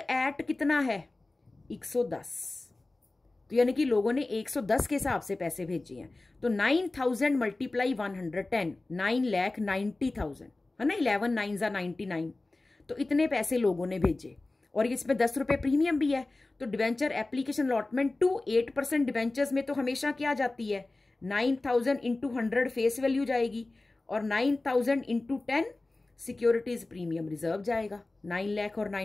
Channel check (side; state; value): right; quieter; 3.1 dB